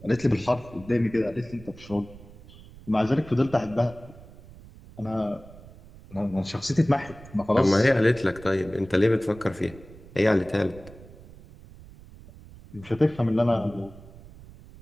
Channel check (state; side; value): noise; right; rumble, 19 dB below the sound